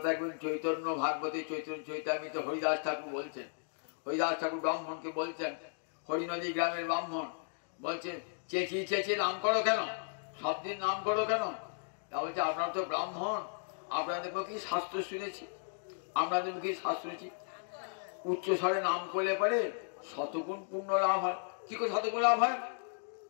একদিন চৈতন্য ভাগবতী চৈতন্য চৈতামিত হরিদাস ঠাকুর বলছেন। হরিদাস ঠাকুর ব্রাহ্মণকে বলছেন, হরিনদী গ্রামের ব্রাহ্মণ বলছেন চেঁচিয়ে চেঁচিয়ে নাম করো কেন, সব দিন নাম করো কেন? তা বলছে আপনারা তো ব্রাহ্মণ, আপনাদের মুখে শাস্ত্র শুনেছি, আপনাদের মুখে শাস্ত্র শুনেছি উচ্চ স্বরে নাম করলে পরে শতগুণ পূর্ণ লাভ হয়। কি করে শতগুণ লাভ হয়?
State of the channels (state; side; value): silent; right; digital silence